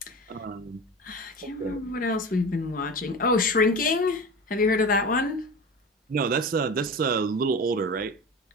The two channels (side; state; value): both; normal; correlation 0.31